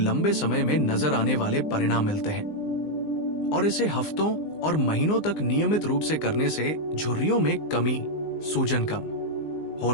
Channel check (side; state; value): right; late; 19 ms